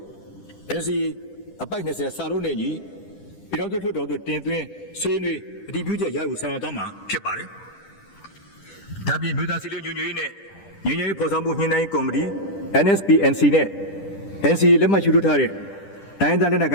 NCA အပိုက်20စာလုံးနဲ့ညီပြည်တော်စုလွှတ်တော်သို့တင်သွင်းဆွေးနွေးအတည်ပြုချက်ရယူဆောင်ရွက်သွားမှာဖြစ်ပါတယ်။ဒါပြင်မြို့သားစီလုံးညွှန်ရေးနဲ့ညီညွတ်ရေးဖော်ဆောင်မှုညှိနှိုင်းကော်မတီ NSPNC နဲ့ NCA လက်မှတ်ယူထားတဲ့တိုင်းဒေသလက်နက်ကိ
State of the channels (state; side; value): late; right; 10 ms